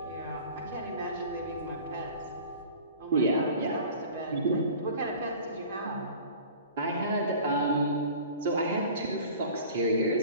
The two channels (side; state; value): both; inverted; correlation -0.43